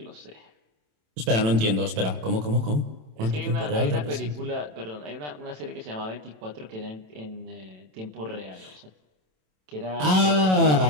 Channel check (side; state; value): left; late; 27 ms